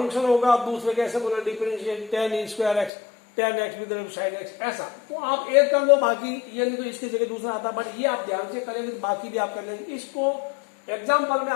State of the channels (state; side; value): drops out; right; at 2.9 s